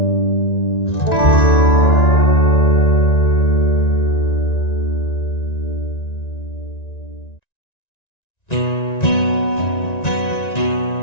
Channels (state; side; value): late; right; 1.9 ms